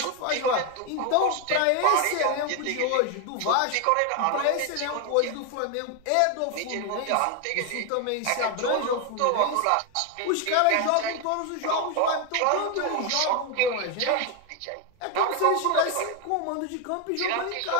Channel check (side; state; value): both; different; correlation 0.01